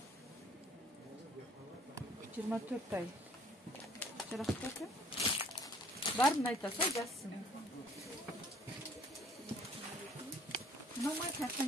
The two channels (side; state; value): both; normal; correlation 0.57